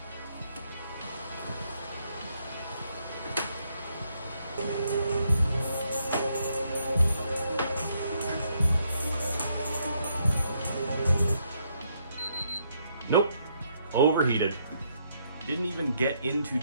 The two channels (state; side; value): inverted; both; correlation -0.74